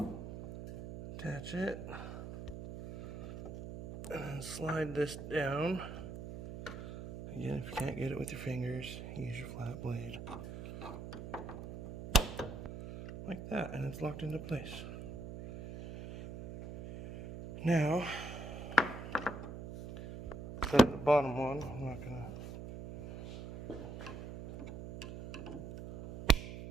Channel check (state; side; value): noise; right; hum, 9 dB below the sound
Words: attach it, And then slide this down. Again, if you can't get it with your fingers, use your flat blade. Like that, and it's locked into place. Now, set the bottom one. I'm not gonna.